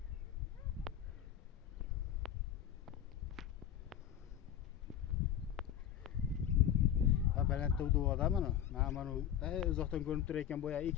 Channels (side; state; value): right; quieter; 10.1 dB